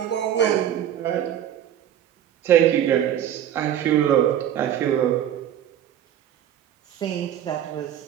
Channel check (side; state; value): left; quieter; 10.6 dB